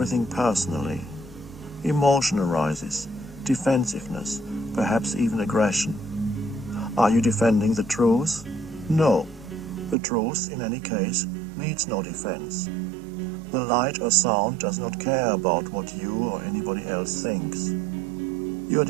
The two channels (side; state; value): left; drops out; at 10.0 s